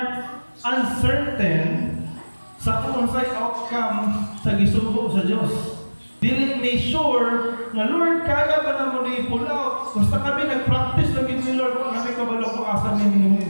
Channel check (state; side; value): inverted; both; correlation -1.00